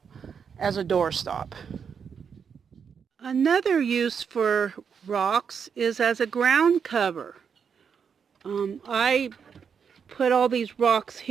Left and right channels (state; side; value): quieter; left; 6.8 dB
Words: as a doorstop. Another use for rocks is as a ground cover. I put all these rocks